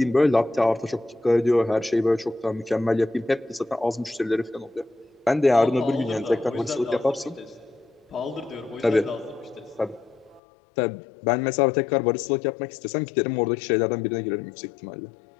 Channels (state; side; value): drops out; right; at 10.4 s